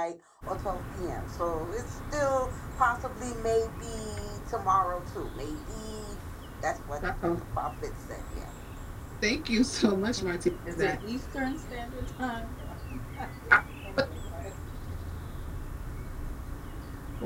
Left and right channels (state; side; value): identical; both; correlation 1.00